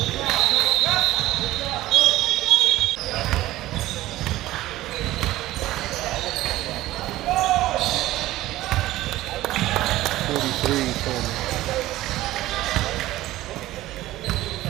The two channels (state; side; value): quieter; left; 16.1 dB